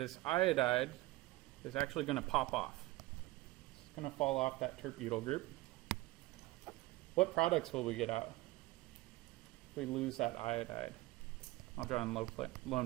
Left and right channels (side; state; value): left; quieter; 19.4 dB